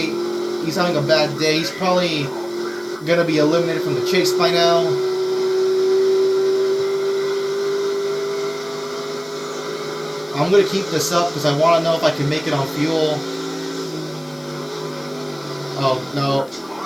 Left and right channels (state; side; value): noise; left; hiss, 26 dB below the sound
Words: He's having a bad day. He's probably gonna be eliminated from the chase by now. I'm gonna keep this up because I want to know if I can make it on fuel. Oh no!